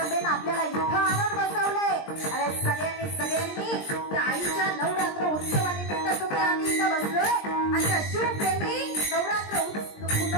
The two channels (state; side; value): late; right; 20 ms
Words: आपल्याला इथं आणून बसवलंय। अरे सगळ्यांनी त्या आईच्या नवरात्र उत्सवानिमित्त तुम्ही आम्ही इथं बसलोय आणि त्या शिवप्रेमी नवरात्र